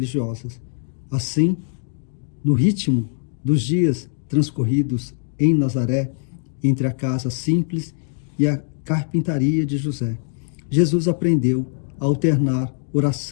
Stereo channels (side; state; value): right; silent; digital silence